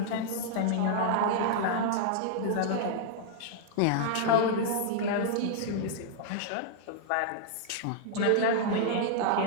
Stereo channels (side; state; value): both; different; correlation -0.01